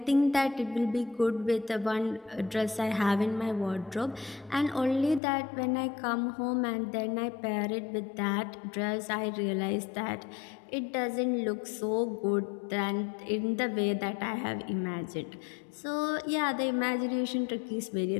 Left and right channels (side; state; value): right; drops out; at 5.2 s